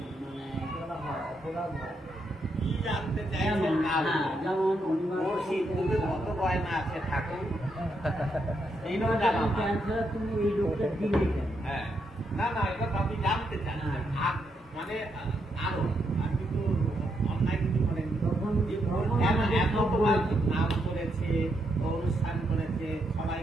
মানে করা হয়, অপরাধ হয়। কি জানতে চাইছেন যেমন না হ্যাঁ, যেমন ওর সিদ্ধুকে কত গয়না আছে ঠাকুর, এইটাও জানা না। ক্যান্সার, তুমি এই রোগটা দিলে কেন? হ্যাঁ, না না, এটা তো আপনি জানতে চান। মানে আরো আর কিন্তু অন্যায় কিছু করেন, তখন এত তোমার নাম করেছে, অনুষ্ঠান করেছে,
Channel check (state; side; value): normal; both; correlation 0.79